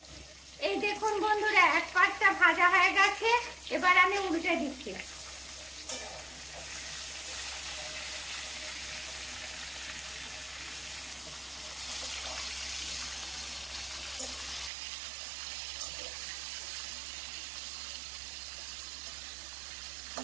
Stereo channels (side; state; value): left; drops out; at 14.7 s